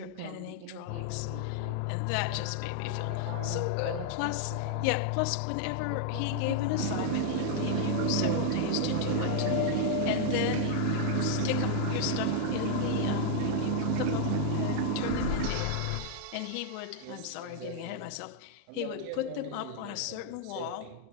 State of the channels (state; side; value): different; both; correlation 0.00